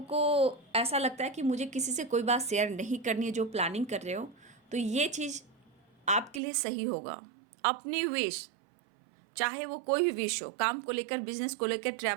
ऐसा लगता है कि मुझे किसी से कोई बात शेयर नहीं करनी है, जो प्लानिंग कर रहे हो, तो ये चीज़ आपके लिए सही होगा। अपनी विश, चाहे वो कोई भी विश हो, काम को लेकर, बिजनेस को लेकर,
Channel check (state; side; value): drops out; left; at 6.4 s